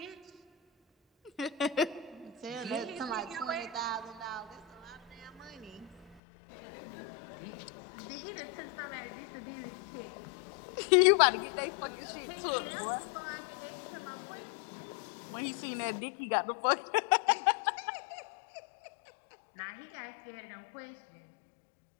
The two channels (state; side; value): drops out; right; at 6.2 s